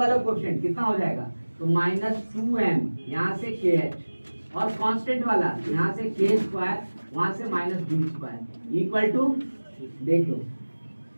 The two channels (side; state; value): both; inverted; correlation -1.00